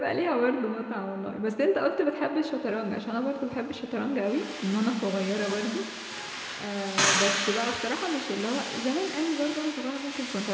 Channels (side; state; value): both; identical; correlation 1.00